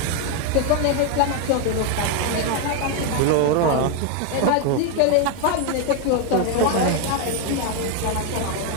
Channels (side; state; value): both; different; correlation 0.01